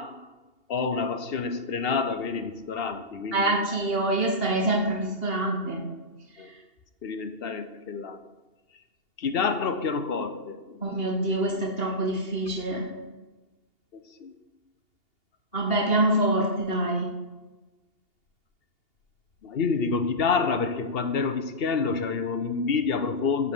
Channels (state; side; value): late; right; 2.8 ms